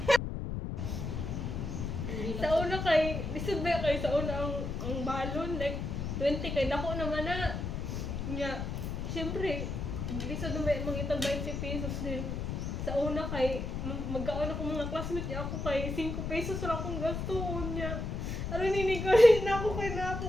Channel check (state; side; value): noise; left; rumble, 3 dB below the sound